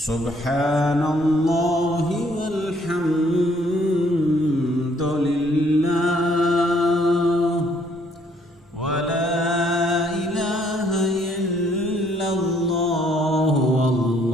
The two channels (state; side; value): normal; both; correlation 0.65